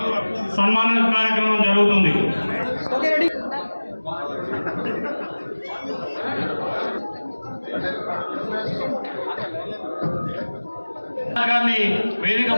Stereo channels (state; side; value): inverted; both; correlation -1.00